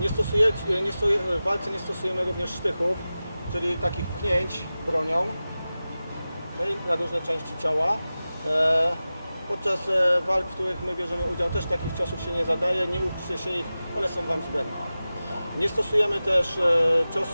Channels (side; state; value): both; inverted; correlation -0.95